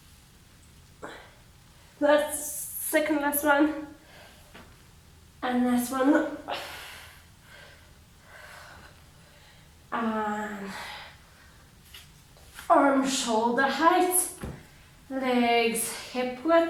that's second last one. And last one. And arm shoulder height. Legs hip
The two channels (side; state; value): both; identical; correlation 1.00